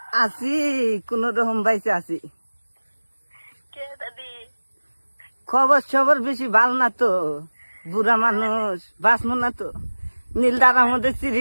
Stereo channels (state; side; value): inverted; both; correlation -1.00